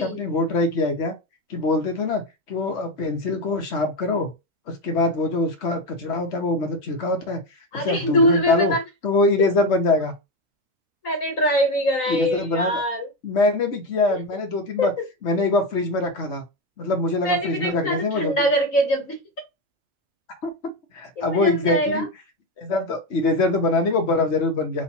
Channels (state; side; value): normal; both; correlation 0.13